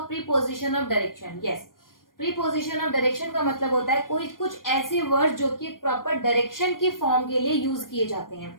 preposition of direction? Yes, preposition of direction का मतलब होता है कोई कुछ ऐसे वर्ड जो कि प्रॉपर डायरेक्शन की फॉर्म के लिए यूज किए जाते हैं।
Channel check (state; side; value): late; right; 0.91 ms